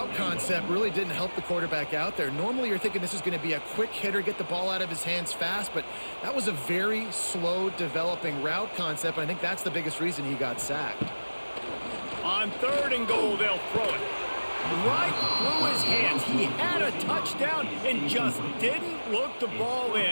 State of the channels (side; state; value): both; inverted; correlation -1.00